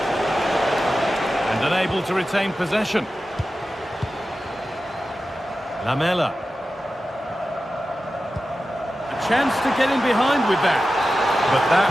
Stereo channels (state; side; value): normal; both; correlation 0.93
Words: And unable to retain possession. Lamela. A chance to get in behind with that. But